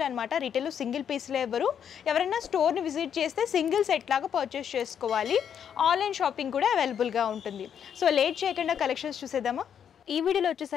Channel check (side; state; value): right; quieter; 8.4 dB